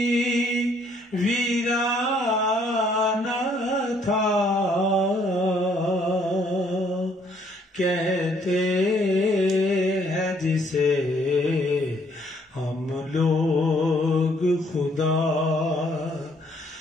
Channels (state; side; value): normal; both; correlation 0.66